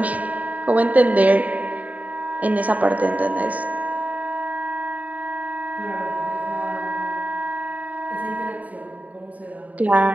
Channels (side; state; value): left; late; 0.071 ms